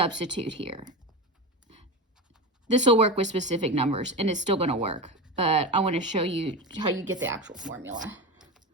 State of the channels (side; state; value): both; normal; correlation 0.22